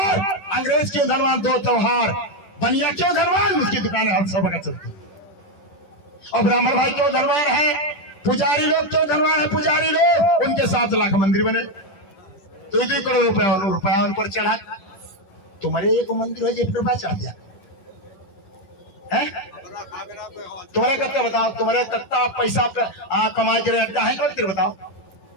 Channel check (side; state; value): right; late; 10 ms